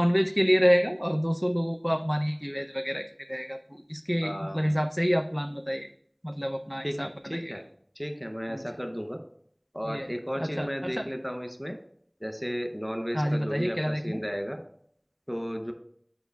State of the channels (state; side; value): identical; both; correlation 1.00